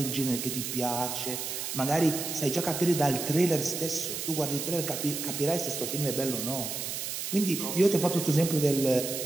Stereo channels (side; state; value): right; noise; hiss, 4 dB below the sound